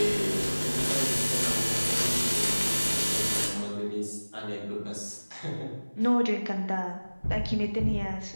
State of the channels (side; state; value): both; inverted; correlation -1.00